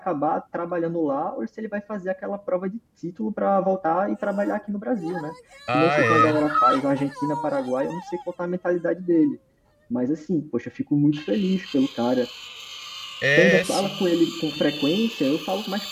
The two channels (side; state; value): both; identical; correlation 1.00